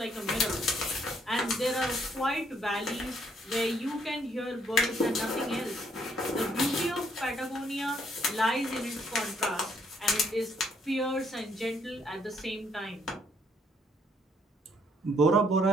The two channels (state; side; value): normal; both; correlation 0.69